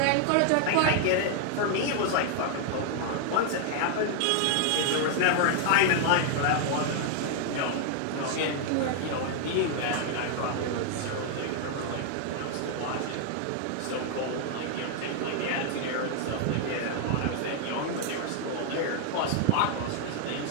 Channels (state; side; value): different; both; correlation 0.00